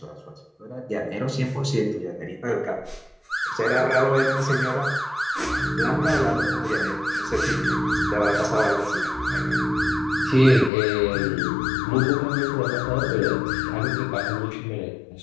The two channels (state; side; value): drops out; right; at 10.7 s